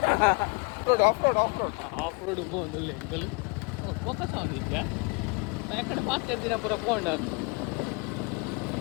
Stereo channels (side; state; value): right; quieter; 31.1 dB